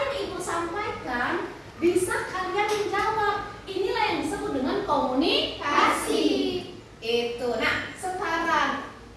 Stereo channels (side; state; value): both; identical; correlation 1.00